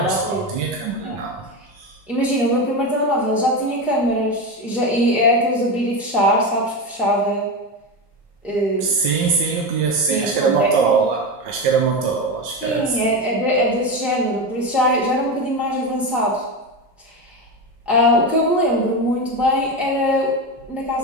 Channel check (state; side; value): normal; both; correlation 0.18